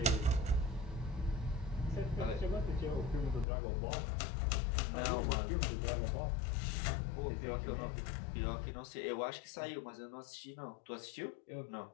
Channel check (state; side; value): drops out; right; at 3.5 s